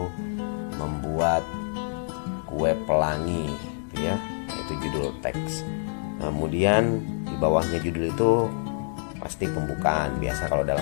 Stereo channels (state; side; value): silent; right; digital silence